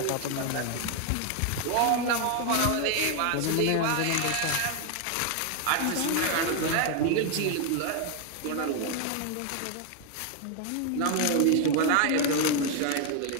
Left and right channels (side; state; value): both; different; correlation 0.00